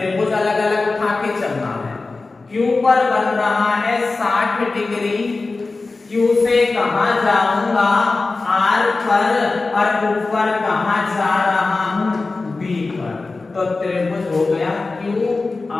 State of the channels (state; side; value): quieter; right; 3.7 dB